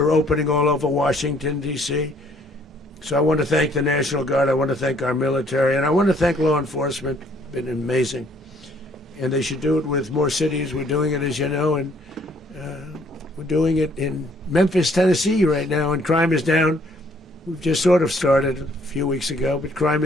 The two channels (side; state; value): both; normal; correlation 0.63